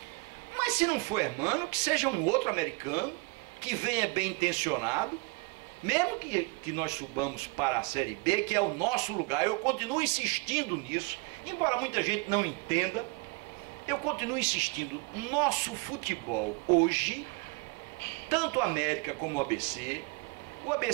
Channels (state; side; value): quieter; left; 27.1 dB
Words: Mas se não for Hermano, que seja um outro americano, que venha bem intencionado, mesmo que nós subamos para a Série B, que é o nosso lugar. Eu continuo insistindo nisso, embora muita gente não entenda, eu continuo insistindo. Nosso futebol hoje, tanto a América como o ABC